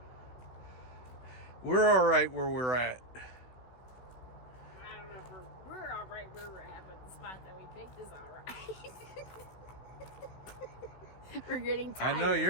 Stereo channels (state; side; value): late; right; 16 ms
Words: We're all right where we're at. I don't know if we're all right where we're at, but the spot that we picked is all right. We're getting tired. I know